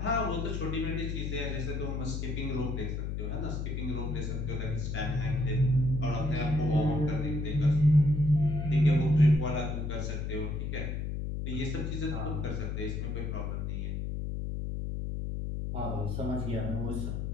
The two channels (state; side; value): noise; left; hum, 2 dB below the sound